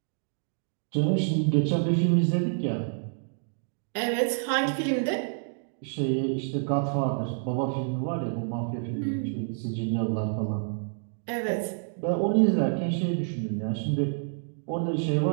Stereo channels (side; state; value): left; silent; digital silence